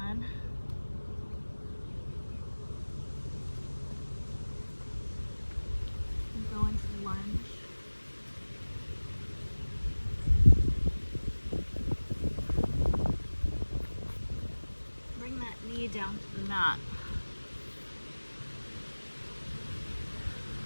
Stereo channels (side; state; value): both; inverted; correlation -1.00